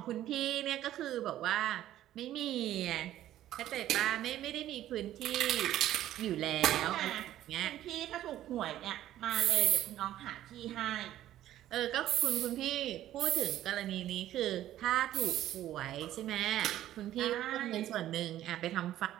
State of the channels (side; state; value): left; quieter; 13.0 dB